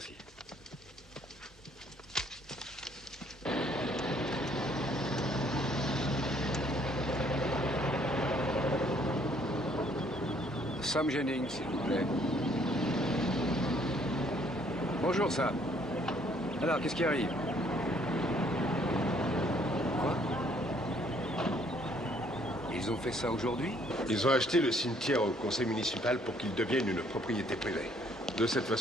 Sam Jennings, s'il vous plaît. Bonjour, Sam. Alors, qu'est-ce qui arrive? Ils ont fait ça aujourd'hui? Ils ont acheté le cimetière au conseil municipal pour qu'il devienne une propriété privée. De cette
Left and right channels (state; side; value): normal; both; correlation 0.64